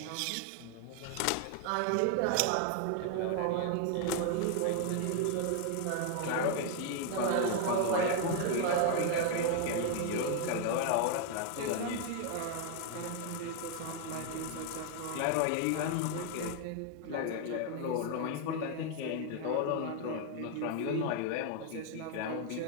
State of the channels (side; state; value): both; different; correlation 0.00